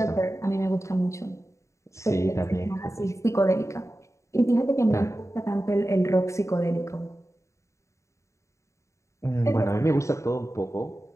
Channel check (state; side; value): late; right; 0.14 ms